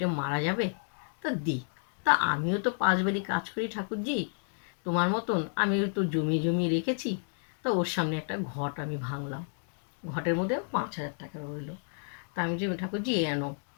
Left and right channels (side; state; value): right; silent; 57 dB below the other